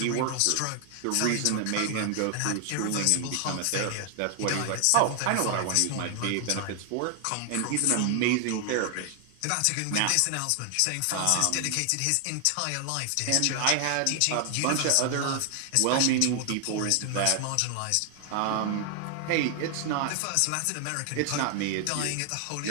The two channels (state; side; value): different; both; correlation 0.00